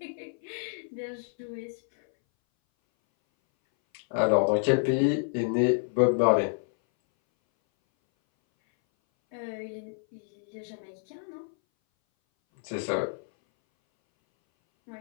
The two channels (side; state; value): right; silent; 59 dB below the other